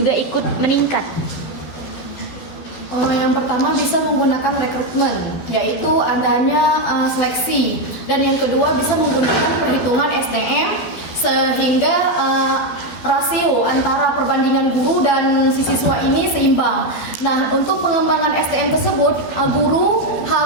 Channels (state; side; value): late; right; 12 ms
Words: ikut meningkat? Yang pertama bisa menggunakan rekrutmen, yaitu adanya seleksi. Dan yang kedua bisa menggunakan perhitungan SDM sehingga rasio antara perbandingan guru dan si siswa ini seimbang. Nah, untuk pengembangan SDM tersebut, guru